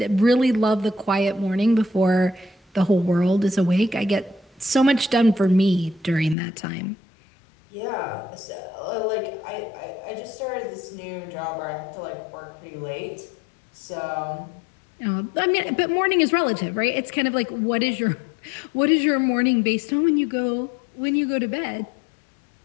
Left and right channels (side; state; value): right; drops out; at 6.4 s